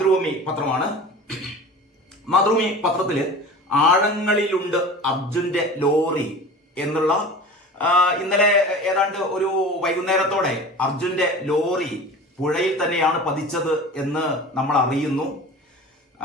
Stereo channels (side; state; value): both; normal; correlation 0.37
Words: പത്രമാണ്. മാതൃഭൂമി പത്രത്തില് ആഴങ്ങളിലുണ്ട് അർജുന്റെ ലോറി എന്നുള്ള ഇന്നലെ ഏതാണ്ട് ഒരു വൈകുന്നേരത്തോടെ അർജുന്റെ ലോറി പുഴയിൽ തന്നെയാണ് പതിച്ചത് എന്ന് നമ്മൾ അറിയുന്നു.